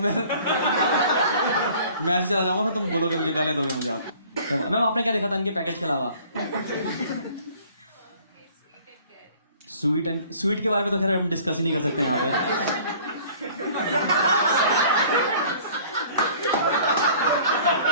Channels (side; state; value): both; inverted; correlation -0.52